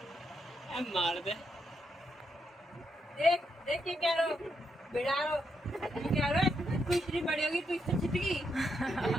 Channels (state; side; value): normal; both; correlation 0.80